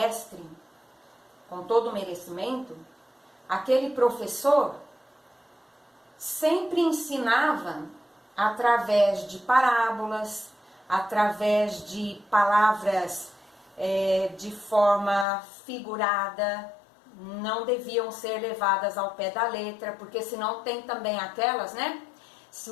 com todo o merecimento. Aquele professor sempre ensinava através de parábolas, através de palavras de forma figurada, não deviam ser levadas ao pé da letra, porque senão tem também aquelas, né? Se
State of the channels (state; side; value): drops out; right; at 15.2 s